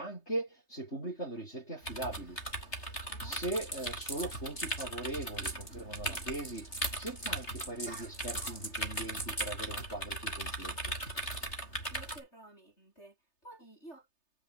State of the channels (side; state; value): right; late; 3.3 ms